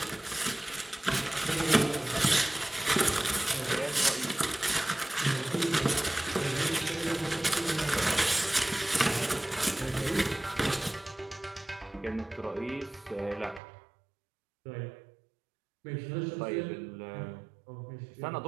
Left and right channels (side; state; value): left; drops out; at 13.6 s